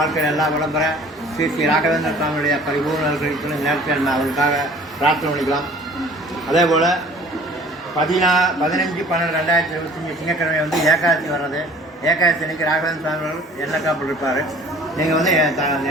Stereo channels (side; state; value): both; normal; correlation 0.50